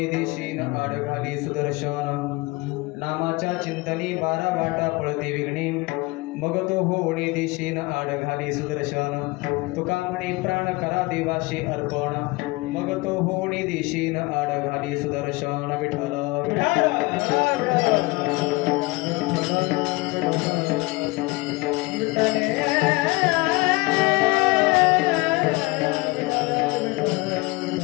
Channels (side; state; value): right; quieter; 23.5 dB